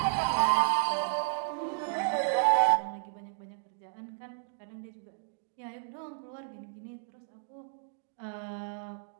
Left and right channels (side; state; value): left; silent; digital silence